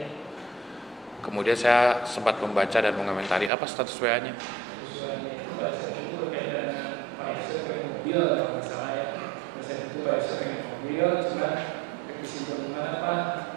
Kemudian saya sempat membaca dan mengomentari apa status WA-nya.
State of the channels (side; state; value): left; drops out; at 3.5 s